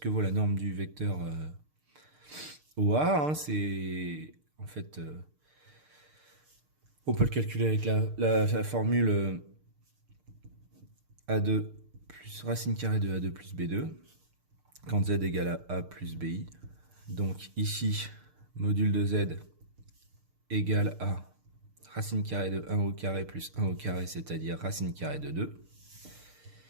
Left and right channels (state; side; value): late; left; 6.6 ms